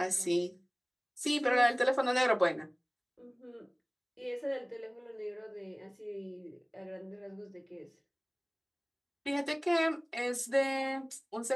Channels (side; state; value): both; identical; correlation 1.00